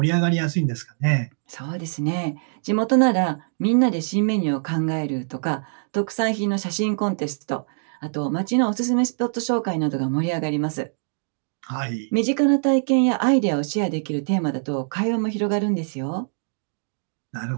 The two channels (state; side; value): silent; left; digital silence